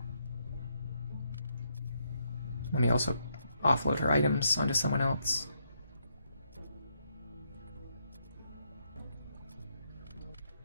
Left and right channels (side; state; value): both; inverted; correlation -0.77